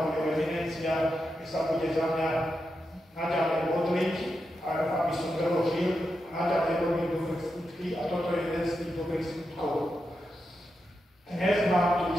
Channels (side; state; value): both; normal; correlation 0.87